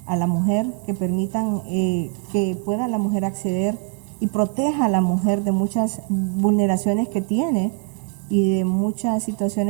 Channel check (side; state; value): left; quieter; 39.3 dB